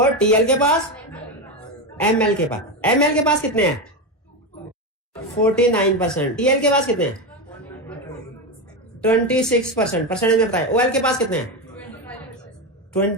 टीएल के पास, एमएल के पास। एमएल के पास कितने हैं? 49%। टीएल के पास कितने हैं? 26%। परसेंटेज में बताएं। ओएल के पास कितने हैं?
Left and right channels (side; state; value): both; normal; correlation 0.14